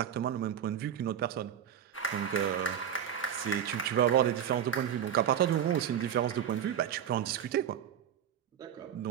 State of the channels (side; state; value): left; quieter; 9.4 dB